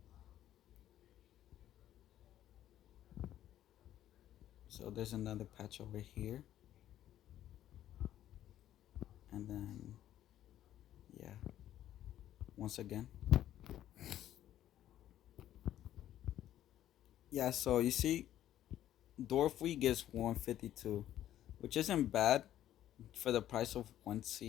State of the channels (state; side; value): quieter; right; 12.2 dB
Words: So there's another patch over here, and then yeah, once again. Yeah, so you see, Dwarf Wheat gets 152, which isn't bad for the price of one